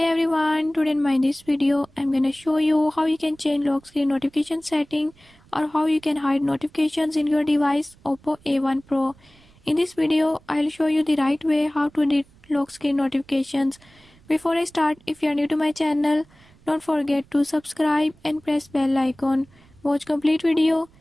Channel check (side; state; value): right; noise; rumble, 28 dB below the sound